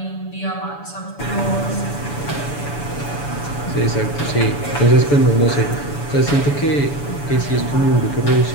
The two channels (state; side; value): late; right; 7.0 ms